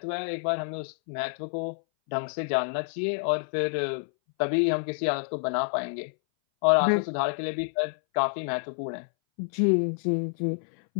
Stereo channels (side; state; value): right; silent; 59 dB below the other